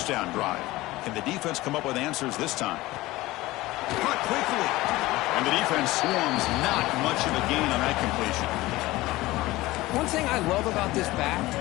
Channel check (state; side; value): quieter; right; 18.7 dB